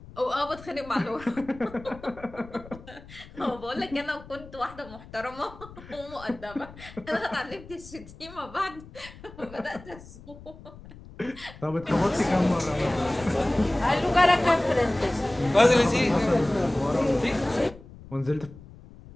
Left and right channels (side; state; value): left; noise; rumble, 18 dB below the sound